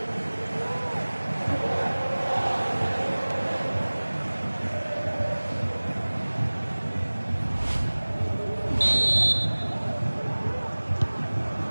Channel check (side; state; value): both; inverted; correlation -1.00